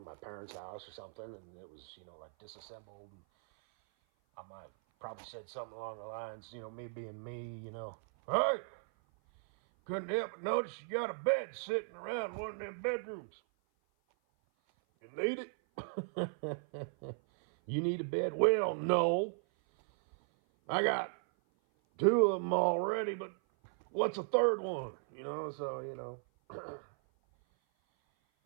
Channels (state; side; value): silent; left; 53 dB below the other